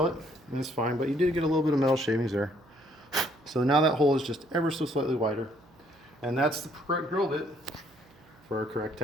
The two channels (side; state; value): right; noise; hum, 28 dB below the sound